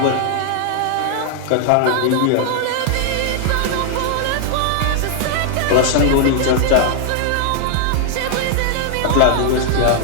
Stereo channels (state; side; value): different; both; correlation -0.01